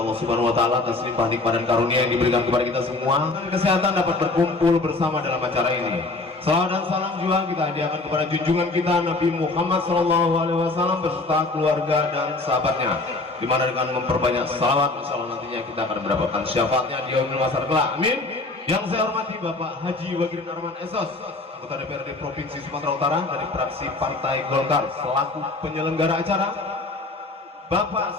Subhanahu wa Ta'ala atas limpah nikmat dan karunia yang diberikan kepada kita semua, dan kesehatan dapat berkumpul bersama dalam acara ini. Salawat dan salam juga kita hadiahkan kepada junjungan kita Nabi Muhammad SAW beserta keluarga dan sahabatnya, dimana dengan memperbanyak salawat insya Allah nantinya kita akan mendapatkan syafaatnya di yaumil mahsyar kelak. Amin. Yang saya hormati Bapak Haji Wagirin Arman Esos, anggota DPRD Provinsi Sumatera Utara dari fraksi Partai Golkar selaku penyelenggara acara.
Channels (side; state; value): right; quieter; 3.2 dB